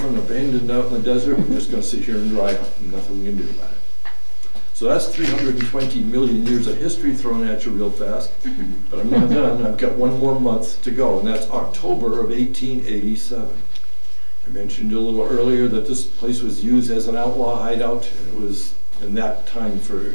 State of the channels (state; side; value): inverted; both; correlation -1.00